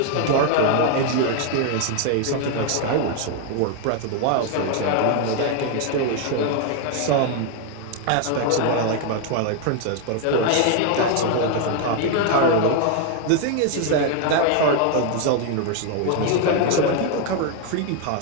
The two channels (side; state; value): both; different; correlation 0.01